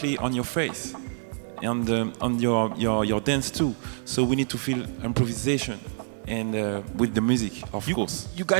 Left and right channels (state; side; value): silent; left; digital silence